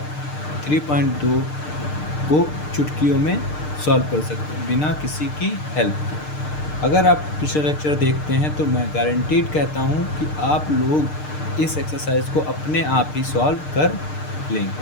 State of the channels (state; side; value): late; right; 6.6 ms